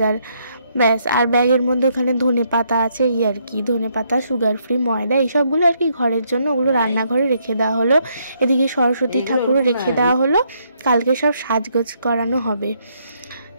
ব্যাস। আর ব্যাগের মধ্যে ওখানে ধনেপাতা আছে, এই আর কি, ধনেপাতা, সুগার ফ্রি, ময়দা, এইসবগুলো আর কি ঘরের জন্য, ওগুলো রান্নাঘরে রেখে দেওয়া হলো। এদিকে সরস্বতী ঠাকুরও রেখে দেওয়া হলো, কালকে সব সাজগোজ করানো হবে।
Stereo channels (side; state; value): both; inverted; correlation -0.73